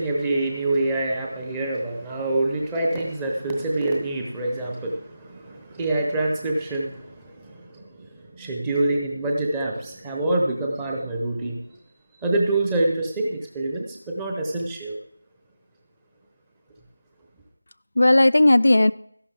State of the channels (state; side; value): inverted; both; correlation -0.89